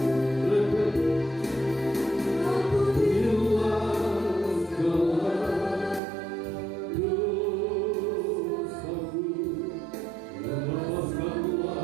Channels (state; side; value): drops out; left; at 6.0 s